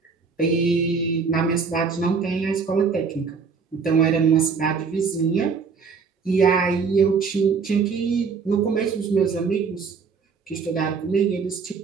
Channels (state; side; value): quieter; left; 5.4 dB